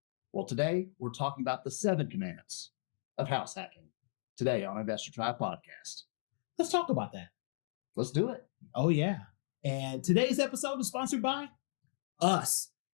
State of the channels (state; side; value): silent; right; digital silence